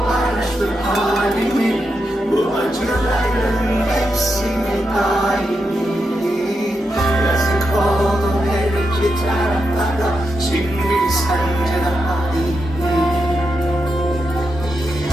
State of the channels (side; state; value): both; normal; correlation 0.86